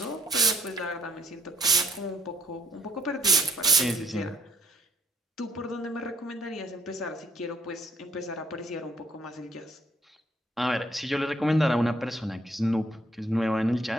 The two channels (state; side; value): normal; both; correlation 0.68